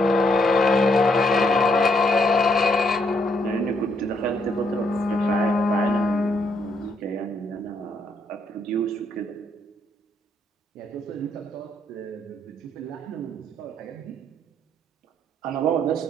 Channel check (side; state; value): both; normal; correlation 0.73